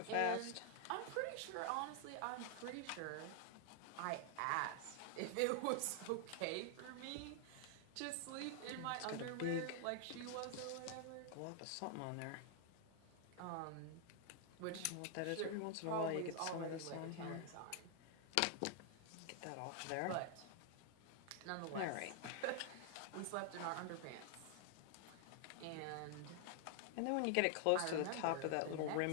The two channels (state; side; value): different; both; correlation 0.00